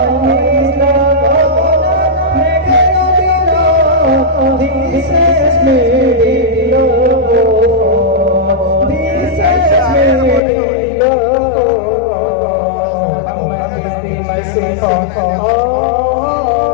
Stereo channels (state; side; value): drops out; right; at 10.4 s